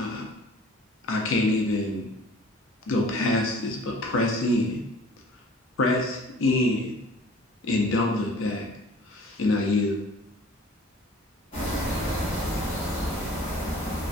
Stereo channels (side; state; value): both; normal; correlation 0.49